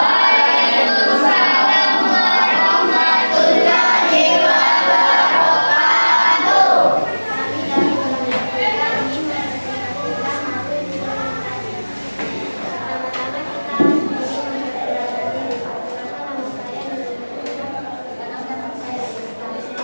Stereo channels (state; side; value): inverted; both; correlation -1.00